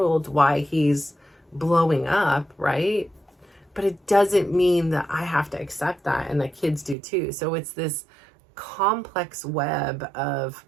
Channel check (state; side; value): drops out; left; at 7.0 s